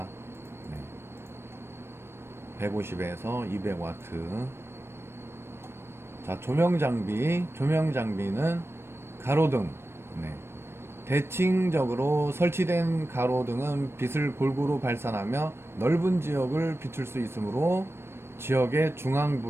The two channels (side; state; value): left; late; 0.12 ms